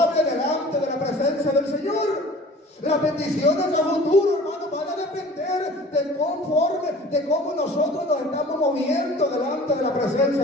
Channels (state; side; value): normal; both; correlation 0.45